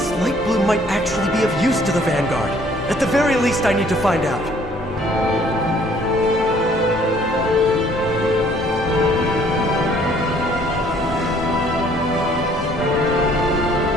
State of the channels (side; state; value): both; normal; correlation 0.60